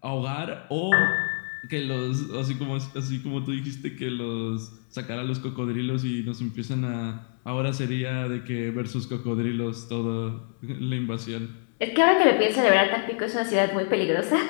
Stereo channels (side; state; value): right; silent; digital silence